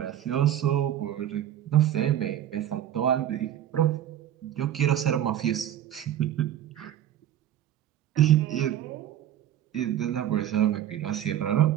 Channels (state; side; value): quieter; left; 11.3 dB